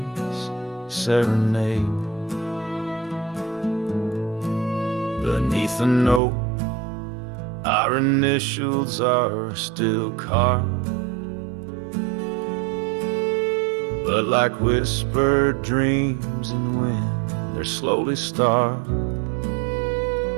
serenade. Beneath the note, our initials are still carved, but like whispered dreams in wind, they're slowly starved.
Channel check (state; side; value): drops out; left; at 6.2 s